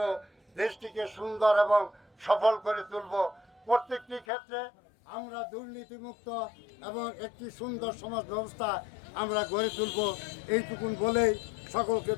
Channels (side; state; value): right; drops out; at 4.2 s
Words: দেশটিকে সুন্দর এবং সফল করে তুলব। প্রত্যেকটি ক্ষেত্রে আমরা দুর্নীতিমুক্ত এবং একটি সুন্দর সমাজ ব্যবস্থা আমরা গড়ে তুলব। এইটুকুন বলেই সকলকে